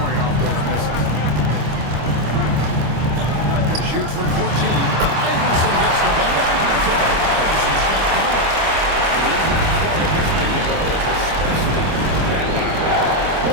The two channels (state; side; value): late; left; 25 ms